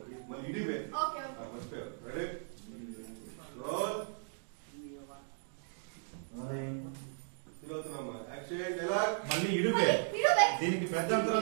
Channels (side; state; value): left; silent; digital silence